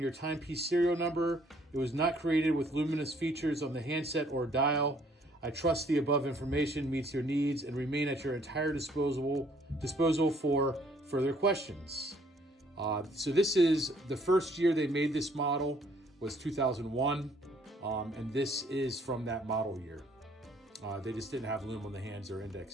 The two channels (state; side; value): normal; both; correlation 0.63